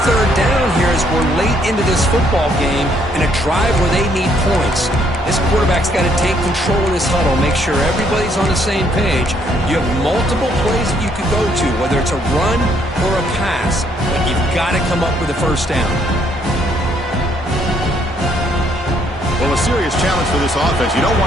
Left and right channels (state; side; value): normal; both; correlation 0.69